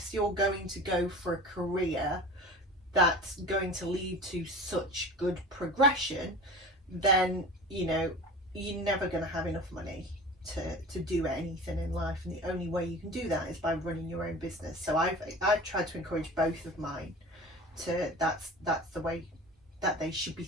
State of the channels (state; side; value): normal; both; correlation 0.36